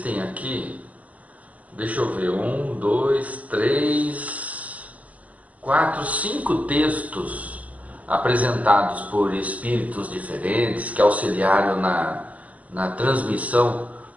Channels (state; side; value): late; left; 0.069 ms